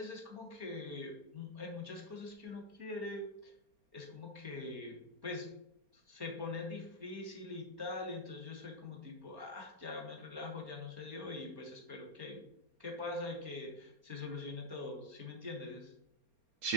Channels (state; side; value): late; left; 4.3 ms